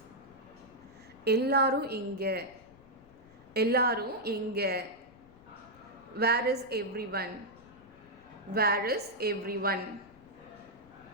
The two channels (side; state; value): left; noise; rumble, 25 dB below the sound